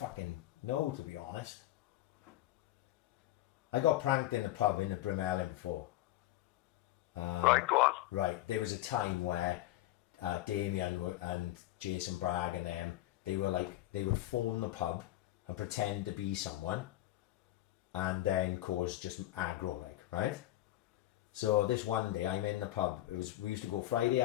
know, to be honest. I got pranked in a pub in the Brimellin before. Right, go on. Right, there was a time where Damien and Jason Bragg and them, they would phone the pub and pretend to be someone and then cause just aggro, like, right? So this one day I'm in the pub. We used to go Friday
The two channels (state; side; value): quieter; right; 15.5 dB